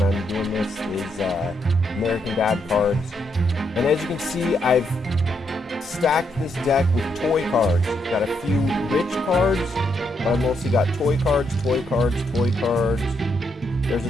I'm doing this is American Dad cards. And as you can see, I've stacked this deck with toy cards. Got a few rich cards, but I've mostly got toy cards, toy cards, toy cards. There's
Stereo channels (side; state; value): both; normal; correlation 0.78